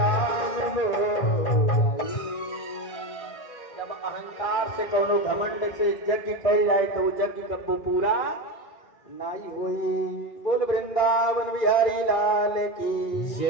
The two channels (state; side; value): late; right; 2.4 ms